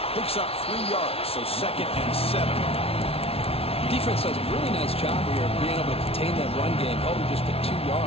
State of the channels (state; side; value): late; right; 0.28 ms